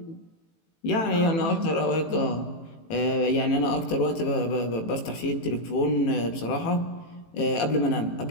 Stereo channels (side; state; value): right; late; 18 ms